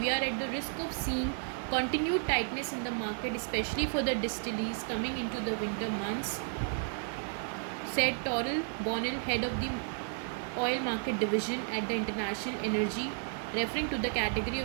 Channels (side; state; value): left; silent; 56 dB below the other